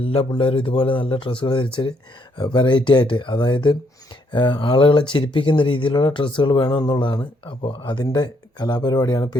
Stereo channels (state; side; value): normal; both; correlation 0.72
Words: പിള്ളേരും ഇതുപോലെ നല്ല ഡ്രസ്സുകൾ ധരിച്ച് വെറൈറ്റി ആയിട്ട്, അതായത് ആളുകളെ ചിരിപ്പിക്കുന്ന രീതിയിലുള്ള ഡ്രസ്സുകൾ വേണമെന്നുള്ളതാണ്. അപ്പോൾ അതിൻ്റെ കലാപരിപാടിയാണ് ഇപ്പോൾ